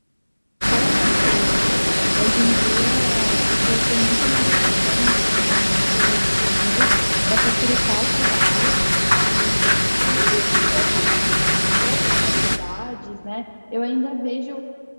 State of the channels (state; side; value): inverted; both; correlation -1.00